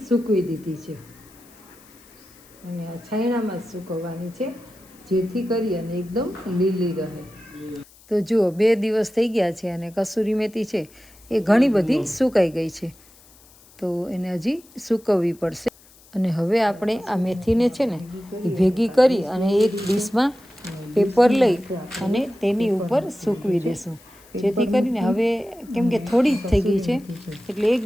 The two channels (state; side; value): noise; left; hiss, 26 dB below the sound